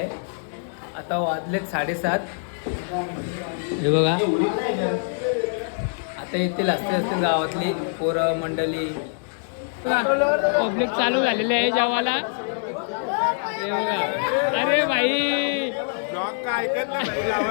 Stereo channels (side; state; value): right; silent; 62 dB below the other